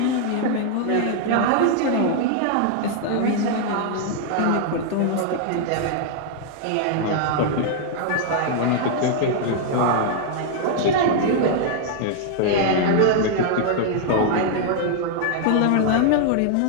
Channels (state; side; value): different; both; correlation 0.00